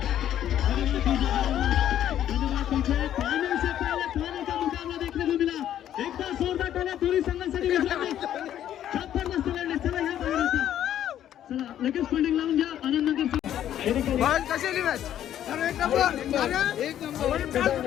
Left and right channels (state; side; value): quieter; right; 11.1 dB